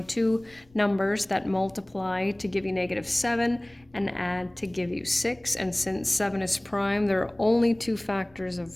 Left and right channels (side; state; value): left; noise; rumble, 29 dB below the sound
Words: 2 numbers that multiply to give you -7 and add to give you 6. And since 7 is prime, there are only 2 factors